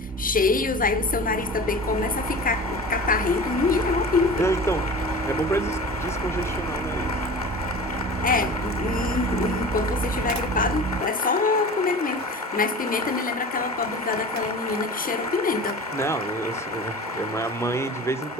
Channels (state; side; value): normal; both; correlation 0.37